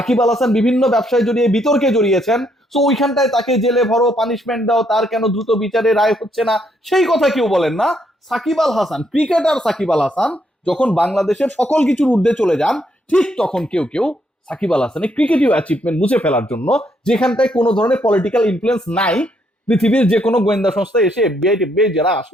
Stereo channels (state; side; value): normal; both; correlation 0.73